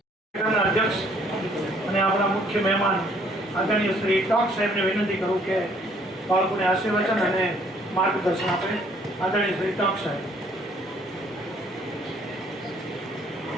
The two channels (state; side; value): normal; both; correlation 0.62